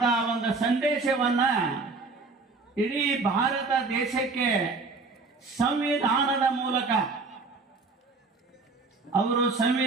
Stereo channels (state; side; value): quieter; left; 4.0 dB